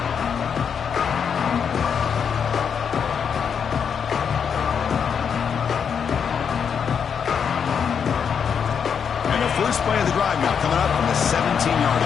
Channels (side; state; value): right; quieter; 7.1 dB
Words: First play of the drive now coming up from the 17-yard